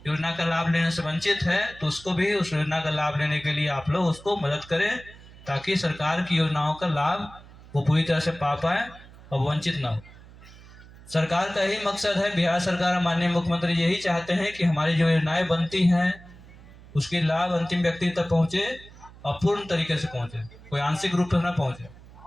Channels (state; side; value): noise; right; hum, 21 dB below the sound